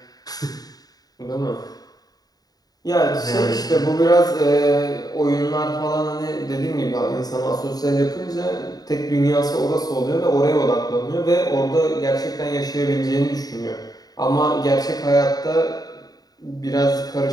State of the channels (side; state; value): right; late; 0.18 ms